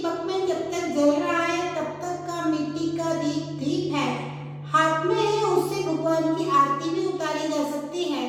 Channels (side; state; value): both; identical; correlation 1.00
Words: में, जब तक जल रहा है तब तक का मिट्टी का दीप है, हाथ में है, उससे भगवान की आरती भी उतारी जा सकती है,